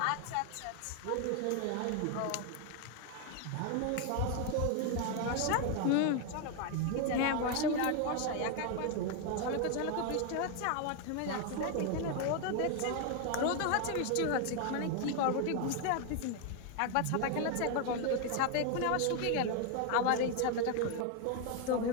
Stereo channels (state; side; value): different; both; correlation 0.01